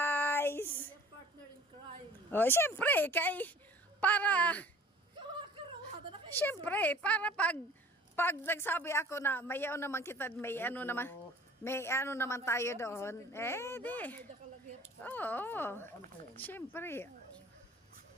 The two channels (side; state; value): both; normal; correlation 0.48